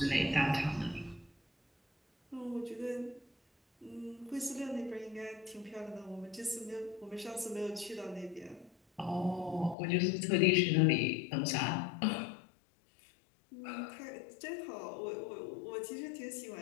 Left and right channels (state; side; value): drops out; right; at 9.8 s